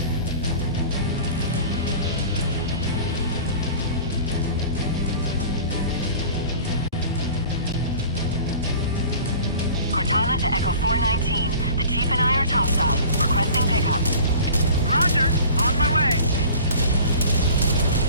Cortana to Echo 419. The Chief and I are topside. Requesting pickup. Roger. On my way.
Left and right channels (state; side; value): inverted; both; correlation -0.43